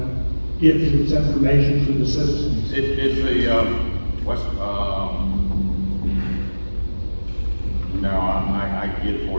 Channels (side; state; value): both; inverted; correlation -1.00